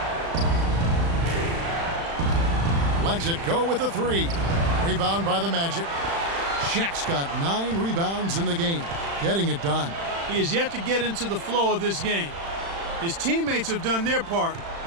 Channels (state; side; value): late; left; 36 ms